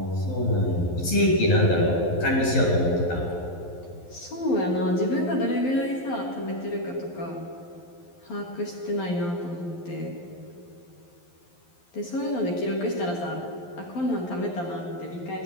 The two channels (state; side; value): late; right; 12 ms